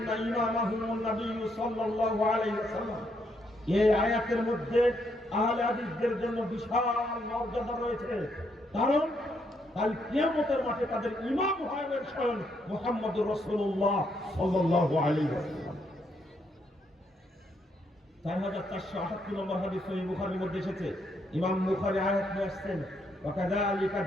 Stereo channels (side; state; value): both; normal; correlation 0.75